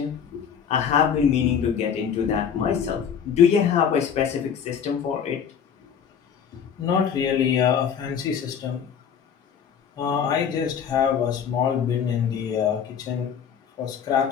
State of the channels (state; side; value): quieter; right; 7.7 dB